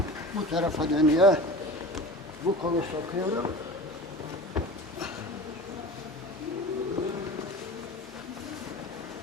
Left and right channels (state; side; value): normal; both; correlation 0.35